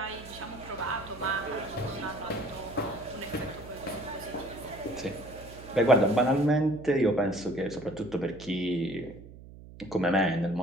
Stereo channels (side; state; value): right; noise; hum, 17 dB below the sound